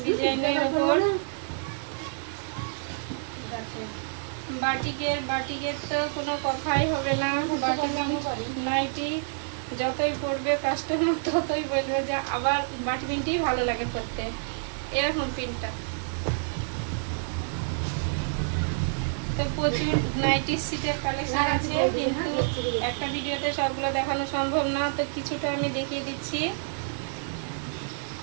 ডিজাইনের উপর বাটিকের তো কোনো কথাই হবে না। বাটিক নাইটি যতই পরবে কাস্টমার ততই বলবে যে আবার বাটি প্রিন্টই ভালো লাগে করতে। এরকম প্রিন্টটা তো প্রচুর নাইটি সিটের কালেকশন আছে, কিন্তু একটা ভিডিওতে সবগুলো দেখানো সম্ভব না, তো কিছুটা আমি দেখিয়ে দিচ্ছি।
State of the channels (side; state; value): left; silent; 59 dB below the other